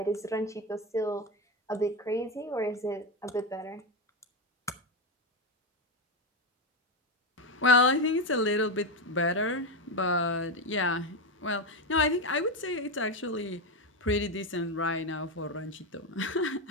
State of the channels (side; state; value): both; normal; correlation 0.11